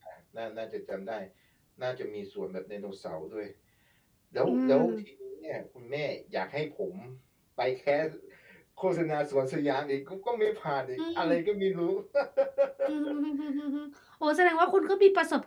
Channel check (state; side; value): identical; both; correlation 1.00